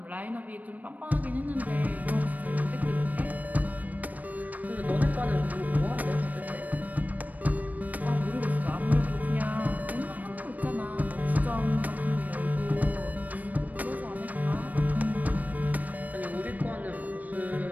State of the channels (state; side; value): late; left; 0.077 ms